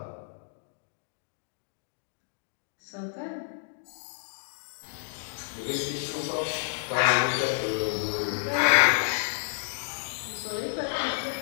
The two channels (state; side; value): silent; right; digital silence